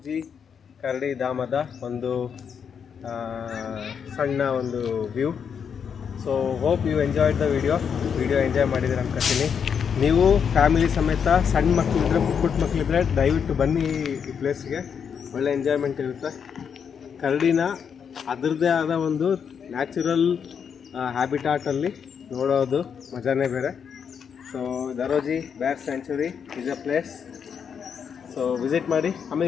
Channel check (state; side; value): quieter; right; 7.1 dB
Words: ಕರಡಿ ಧಾಮದ ಒಂದು ಸಣ್ಣ ಒಂದು view. So hope you enjoyed the video enjoy ಮಾಡಿದ್ದೀರ ಅನ್ಕೊತೀನಿ. ನೀವು ಫ್ಯಾಮಿಲಿ ಸಮೇತ ಸಣ್ಣ ಮಕ್ಕಳಿದ್ರೆ, ಪುಟ್ಟ ಮಕ್ಕಳಿದ್ರೆ ದಯವಿಟ್ಟು ಬನ್ನಿ ಈ ಪ್ಲೇಸ್ಗೆ. ಒಳ್ಳೆ ಎಂಜಾಯ್ಮೆಂಟ್ ಇರುತ್ತೆ. ಕರಡಿನ ಅದರದ್ದೇ ಆದ ಒಂದು ನ್ಯಾಚುರಲ್ ಹ್ಯಾಬಿಟಾಟಲ್ಲಿ ನೋಡೋದು ಮಜಾನೇ ಬೇರೆ. ಸೊ ದರೋಜಿ ಬ್ಯಾರ್ sanctuary is a place. So visit ಮಾಡಿ.